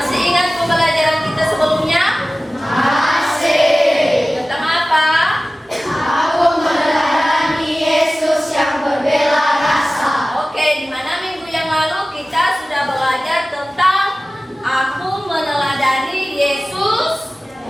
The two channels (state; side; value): normal; both; correlation 0.97